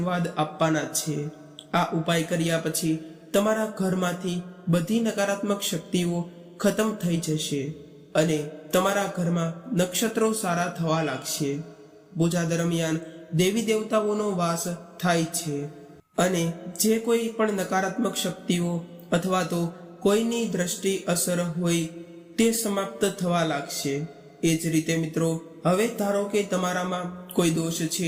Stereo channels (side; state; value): both; identical; correlation 1.00